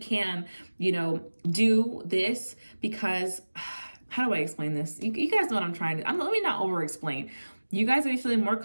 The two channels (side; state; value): both; inverted; correlation -1.00